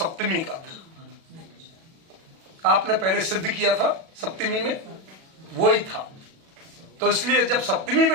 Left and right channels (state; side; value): late; left; 37 ms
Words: का था, आपने पहले सिद्ध किया था सप्तमी में, वही था। तो इसलिए जब सप्तमी